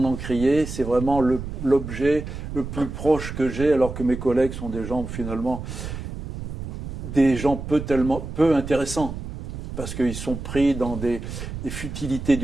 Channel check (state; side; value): noise; right; rumble, 8 dB below the sound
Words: encrier, c'est vraiment l'objet le plus proche que j'ai, alors que mes collègues sont des gens finalement peu intéressants, parce qu'ils sont pris dans des futilités